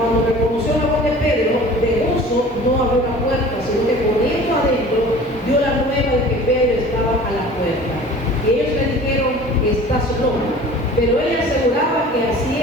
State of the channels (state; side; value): normal; both; correlation 0.44